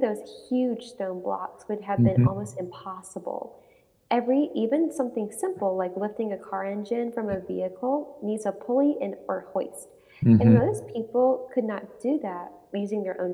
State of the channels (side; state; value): both; identical; correlation 1.00